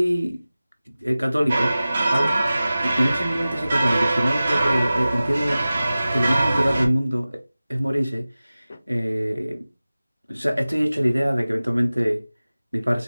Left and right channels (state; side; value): inverted; both; correlation -0.96